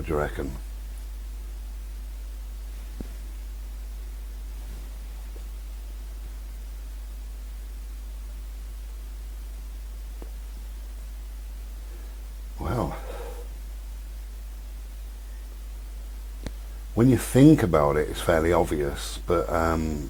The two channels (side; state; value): both; identical; correlation 1.00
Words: do you reckon? Well, when you think about it, it's fairly obvious, but